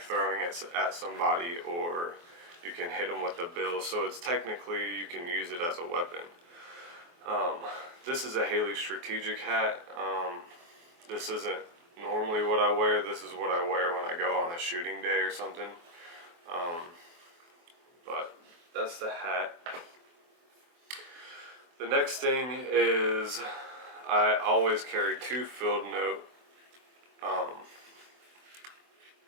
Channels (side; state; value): left; late; 23 ms